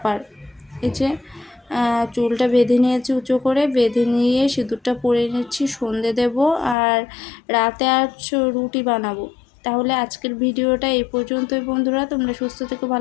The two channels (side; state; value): right; drops out; at 6.8 s